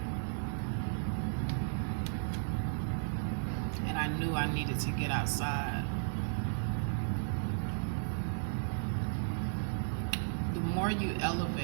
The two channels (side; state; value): left; silent; digital silence